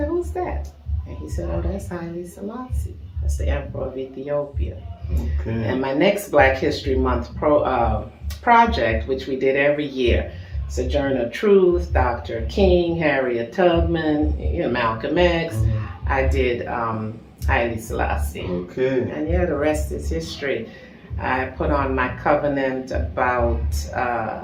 "Who's that?" And he said, "Oh, that's Haile Selassie. That's the Emperor of Ethiopia." Okay. And my next Black History Month project, which we did every year, Sojourner Truth, Dr. King, Harriet Tubman, Malcolm X, I did Haile Selassie. Okay. And yeah, the rest is history. I put on my covenant about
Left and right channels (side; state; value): both; identical; correlation 1.00